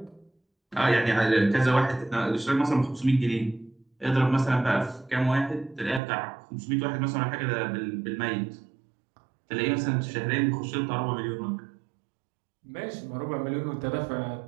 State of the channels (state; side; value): drops out; left; at 6.0 s